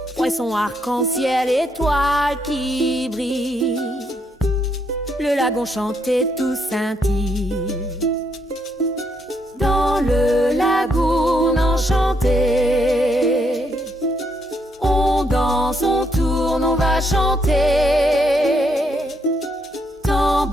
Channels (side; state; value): both; normal; correlation 0.75